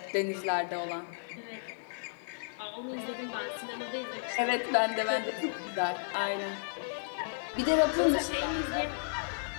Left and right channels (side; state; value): right; silent; digital silence